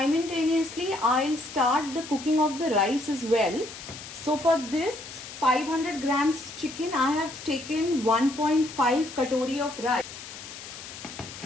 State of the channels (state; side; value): noise; left; hiss, 13 dB below the sound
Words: I'll start the cooking of the rice as well. So for this 500 grams chicken, I have taken 1.5 katori of rice.